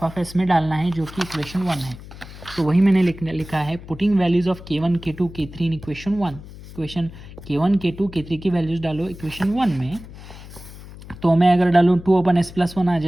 में डालना है, जो कि इक्वेशन 1 है। तो वही मैंने लिखा है, putting values of K1 K2 K3 in equation 1। Equation K1 K2 K3 की वैल्यूज़ डालो इक्वेशन 1 में। तो मैं अगर डालूँ 2/s+1 आ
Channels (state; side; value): noise; left; hum, 16 dB below the sound